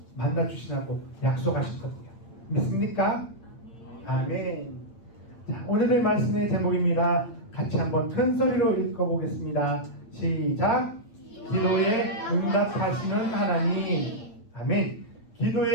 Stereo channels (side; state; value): right; late; 8.8 ms